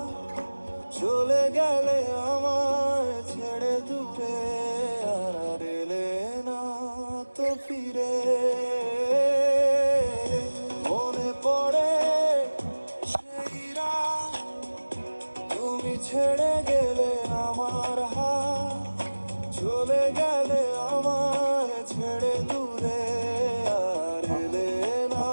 চলে গেলে আমায় ছেড়ে দূরে, আর এলে না তো ফিরে। মনে পড়ে সেই রাত, তুমি ছেড়ে গেলে আমার হাত, চলে গেলে আমায় ছেড়ে দূরে, আর এলে না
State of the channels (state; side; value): inverted; both; correlation -1.00